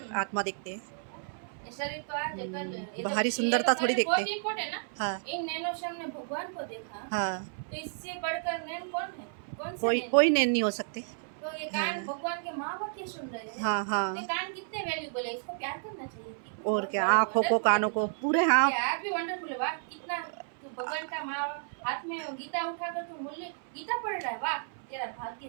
आत्मा देखते हैं। शरीर तो आज कल बाहरी सुंदरता थोड़ी देखते। बहुत इम्पोर्टेंट है ना। हाँ इन नैनो श्याम ने भगवान को देखा, हाँ, तो इससे बढ़कर नैन कौन है? कौन से कोई नैन? कोई नैन नहीं हो सकते। तो ये कान हाँ भगवान के माँ बाप ये सुन रहे हैं। हाँ ये हाँ, कान कितने वैल्यूबल है, इसको प्यार करना चाहिए। और क्या, आँखों को कानों को पूरे, हाँ यार भी वंडरफुल है। वाह कितना भगवान का माँ हाथ में गीता उठाकर तू मूल्य गीता पढ़ रहा है, वाह तेरा भाग्य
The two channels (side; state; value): left; silent; 57 dB below the other